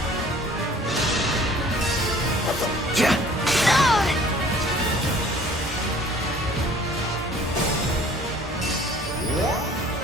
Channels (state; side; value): normal; both; correlation 0.52